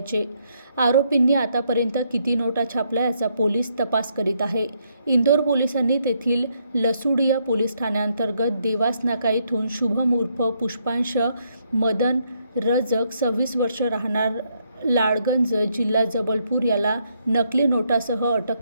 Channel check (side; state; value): both; inverted; correlation -0.74